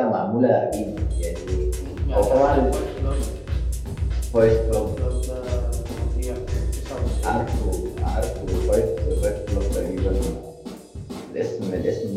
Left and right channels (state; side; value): identical; both; correlation 1.00